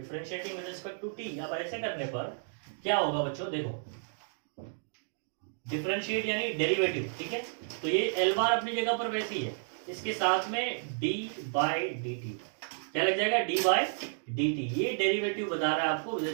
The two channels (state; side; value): silent; left; digital silence